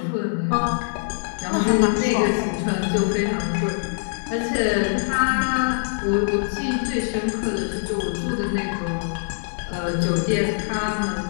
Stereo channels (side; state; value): right; silent; 63 dB below the other